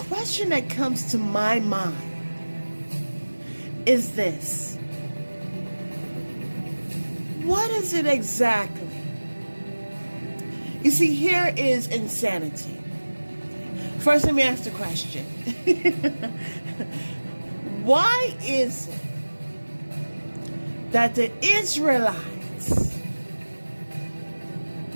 that comes to my mind is this. What is it exactly? You see, here is insanity. First, let me ask the question. Why is it that the Israelites,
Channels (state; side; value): inverted; both; correlation -1.00